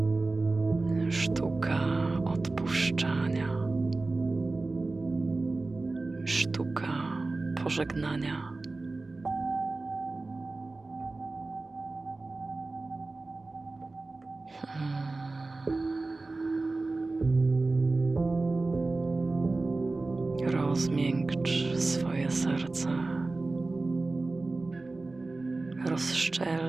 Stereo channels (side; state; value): left; quieter; 3.3 dB